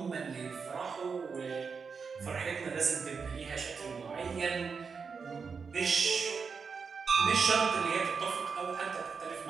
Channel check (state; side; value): quieter; left; 5.5 dB